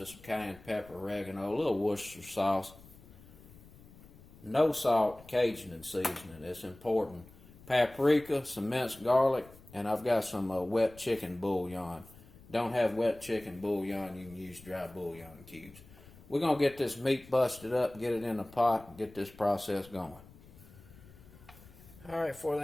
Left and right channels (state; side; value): noise; left; rumble, 22 dB below the sound